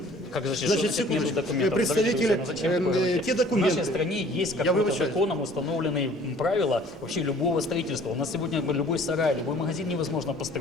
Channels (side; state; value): both; normal; correlation 0.53